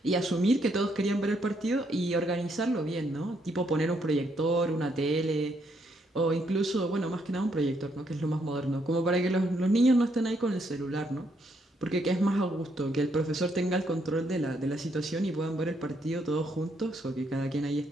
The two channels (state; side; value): normal; both; correlation 0.74